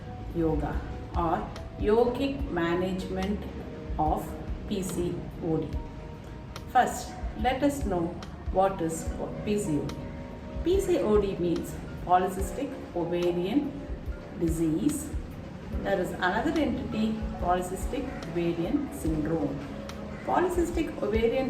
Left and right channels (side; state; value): both; identical; correlation 1.00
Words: yoga or yogic management of PCOD. First, let us know what is PCOD. PCOD means polycystic ovarian disease. There is another entity, polycystic ovarian syndrome. Polycystic